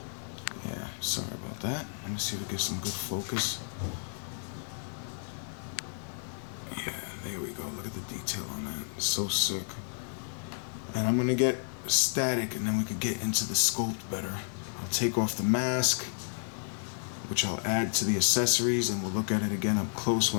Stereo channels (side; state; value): right; silent; digital silence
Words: Yeah, sorry about that. Let me see if we get some good focus. Yeah, there we go. Look at the detail on that. It's so sick. And I'm gonna get static, and then we could get into the sculpt better. I'll take off the mask, which I'll add to the accessories, and we'll look at it again up close